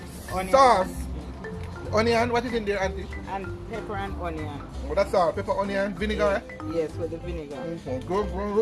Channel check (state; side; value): identical; both; correlation 1.00